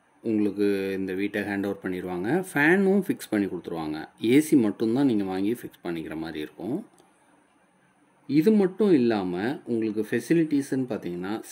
உங்களுக்கு இந்த வீட்டை ஹேண்ட் ஓவர் பண்ணிடுவாங்க. ஃபேனும் ஃபிக்ஸ் பண்ணி கொடுத்துருவாங்க. ஏசி மட்டும்தான் நீங்கள் வாங்கி ஃபிக்ஸ் பண்ணிக்கிற மாதிரி இருக்கும். இது மட்டும் இல்லாமல் உங்களுக்கு ஃபெசிலிட்டிஸ்ன்னு பார்த்தீங்கன்னா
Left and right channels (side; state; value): both; identical; correlation 1.00